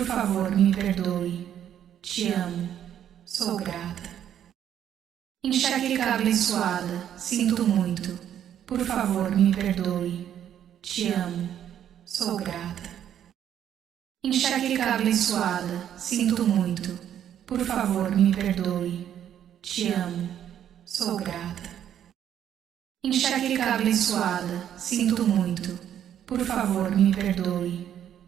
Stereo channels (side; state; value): left; quieter; 10.0 dB